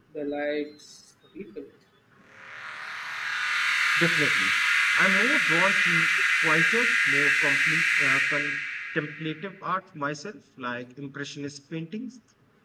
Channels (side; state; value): both; identical; correlation 1.00